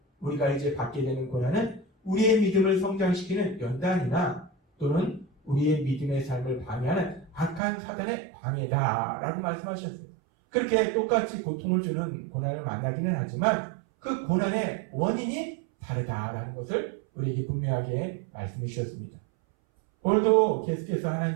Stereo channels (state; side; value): drops out; left; at 7.6 s